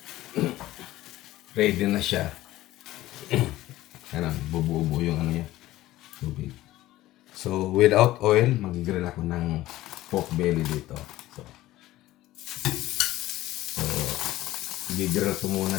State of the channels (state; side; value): quieter; right; 16.0 dB